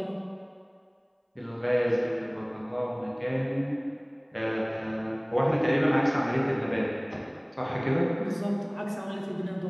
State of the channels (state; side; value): identical; both; correlation 1.00